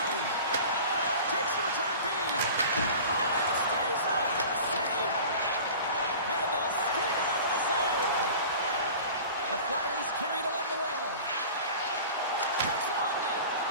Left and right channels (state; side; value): inverted; both; correlation -0.39